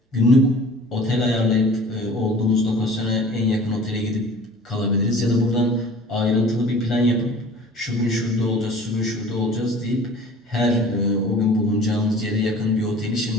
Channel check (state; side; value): normal; both; correlation 0.45